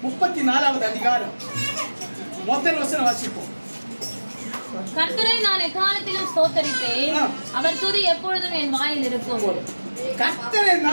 34வது அதிகாரம் முதல் வசனம் வாசிப்போம். கர்த்தரை நான் எக்காலத்திலும் ஸ்தோத்தரிப்பேன், அவர் துதி எப்பொழுதும் என் வாயில் இருக்கும். கர்த்தரை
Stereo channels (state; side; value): inverted; both; correlation -1.00